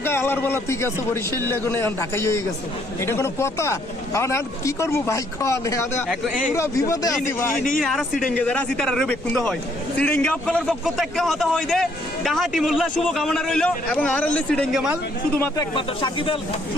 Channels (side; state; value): left; noise; rumble, 24 dB below the sound